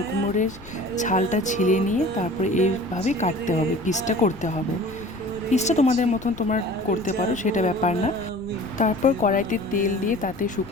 কুমড়োর ছালটা ছিলে নিয়ে তারপরে এইভাবে কাটতে হবে, পিসটা করতে হবে। পিসটা তোমাদের মতন তোমরা করতে পারো, সেটা ব্যাপার না। তারপর কড়াইতে তেল দিয়ে তাতে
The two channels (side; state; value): left; noise; rumble, 19 dB below the sound